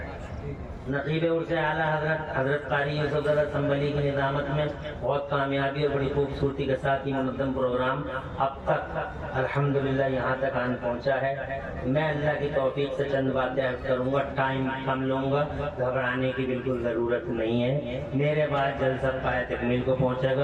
نقیب عرص اعلیٰ حضرت قاری یوسف زادہ سنبلی کی نظامت میں بہت کامیابی اور بڑی خوبصورتی کے ساتھ یہ منظم پروگرام اب تک الحمدللہ یہاں تک آن پہنچا ہے۔ میں اللہ کی توفیق سے چند باتیں عرض کروں گا، ٹائم کم لوں گا، گھبرانے کی بالکل ضرورت نہیں ہے۔ میرے بعد جلسہ پائے تکمیل کو پہنچے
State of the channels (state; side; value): identical; both; correlation 1.00